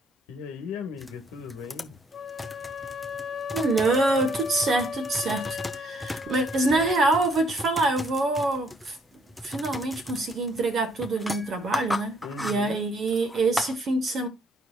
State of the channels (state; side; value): normal; both; correlation 0.66